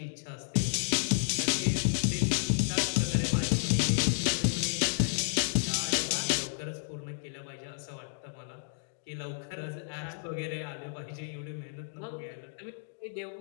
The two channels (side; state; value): right; silent; digital silence